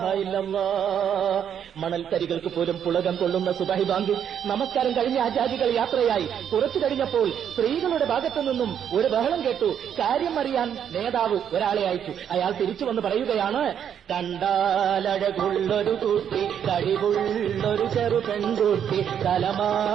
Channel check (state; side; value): quieter; left; 8.8 dB